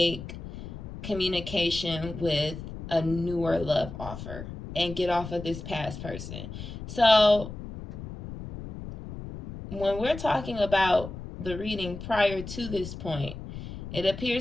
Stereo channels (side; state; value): left; noise; rumble, 10 dB below the sound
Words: communication with a newer love offer and get off of this past person. So when we're talking about the reading prior to this point, it